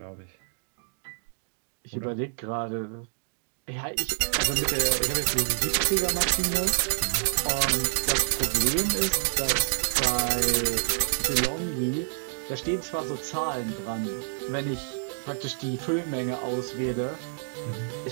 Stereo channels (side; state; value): left; silent; digital silence